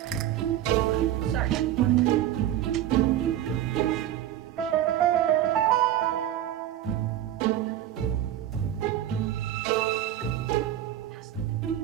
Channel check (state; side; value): quieter; left; 11.9 dB